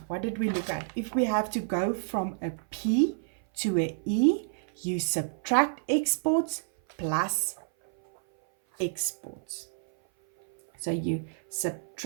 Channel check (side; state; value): left; silent; 57 dB below the other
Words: what did we look at? If we have to go from a P to a E, you subtract exports plus exports. So you